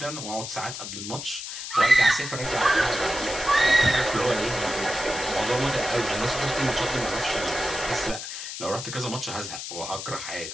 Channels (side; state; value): left; noise; hiss, 7 dB below the sound